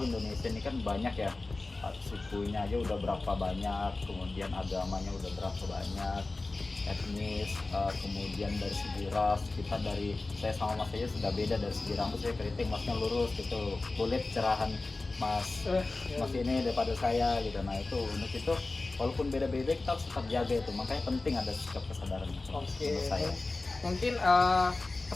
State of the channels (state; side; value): quieter; right; 3.3 dB